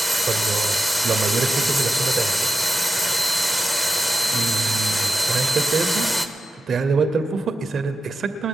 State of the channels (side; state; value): both; normal; correlation 0.90